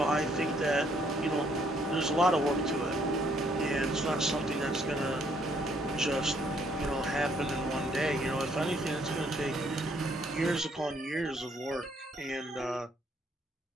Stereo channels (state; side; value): normal; both; correlation 0.68